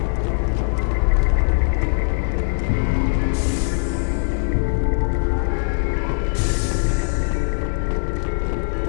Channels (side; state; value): right; silent; digital silence